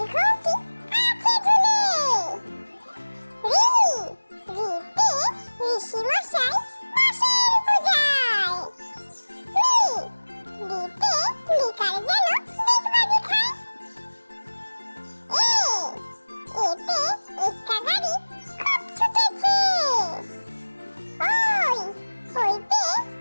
আছে ঝুলে। ঋ ঋতে ঋষি মশাই বসেন পূজায়। রিতে লিকার যেন ডিগবাজি খায়। এতে একটা গাড়ি খুব ছুটেছে। ওইতে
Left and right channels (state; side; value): inverted; both; correlation -1.00